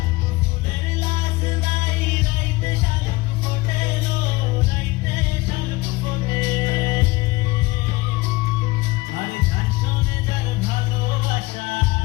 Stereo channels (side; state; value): right; quieter; 21.5 dB